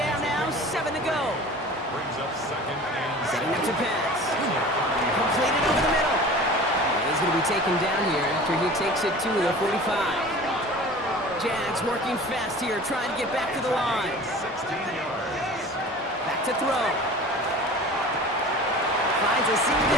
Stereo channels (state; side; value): normal; both; correlation 0.40